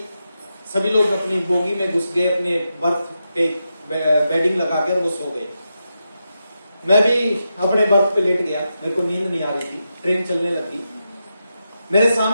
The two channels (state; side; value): inverted; both; correlation -0.87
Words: सभी लोग अपनी बोगी में घुस गए, अपने बर्थ पे बेडिंग लगा के, और वो सो गए। मैं भी अपने बर्थ पे लेट गया, मेरे को नींद नहीं आ रही थी, ट्रेन चलने लगी। मेरे